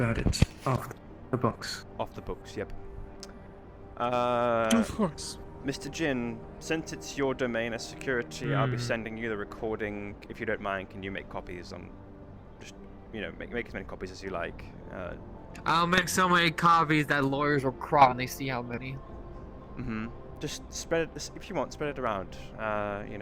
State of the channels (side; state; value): both; identical; correlation 1.00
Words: it off the books. Off the books, yep. Of course. Mr. Jin, since it's your domain as security, I'll be sending you the recording. If you don't mind, can you make copies on... Just, you know, make as many copies as you like. I'll make so many copies that lawyers will cry when they see how many. Just spread it, if you want, spread it around. You